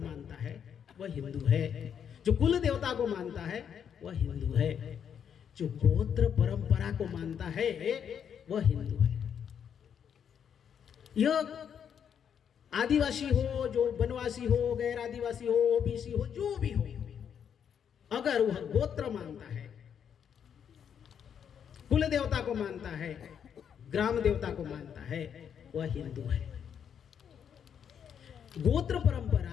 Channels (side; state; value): right; quieter; 8.1 dB